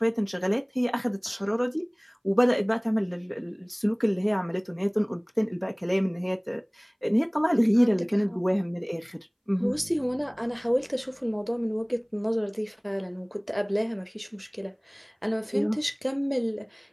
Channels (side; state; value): both; identical; correlation 1.00